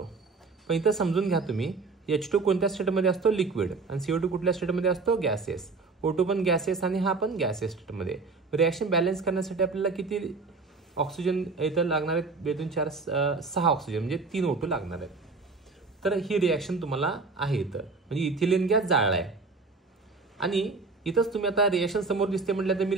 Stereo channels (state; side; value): quieter; left; 4.1 dB